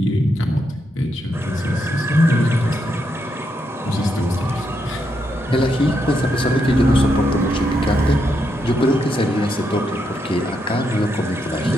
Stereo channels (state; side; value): normal; both; correlation 0.80